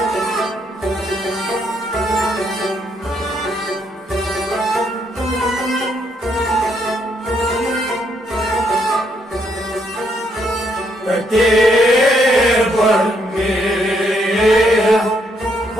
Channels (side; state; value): both; normal; correlation 0.73